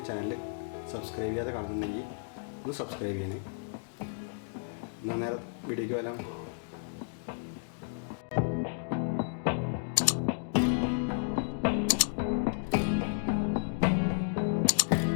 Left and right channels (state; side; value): silent; right; digital silence